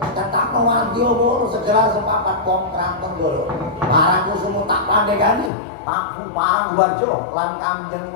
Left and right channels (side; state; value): right; drops out; at 5.5 s